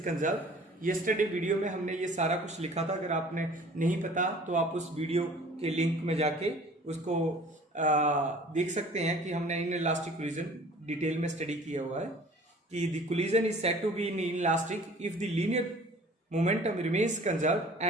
Yesterday video में हमने ये सारा कुछ लिखा था. अगर आपने नहीं पता तो आप उस वीडियो के लिंक में जाके उसको देख सकते हैं कि हमने इन इलास्टिक कोलिजन डिटेल में स्टडी किया हुआ है कि the collision is said to be inelastic if the linear momentum remains conserved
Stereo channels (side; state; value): both; normal; correlation 0.48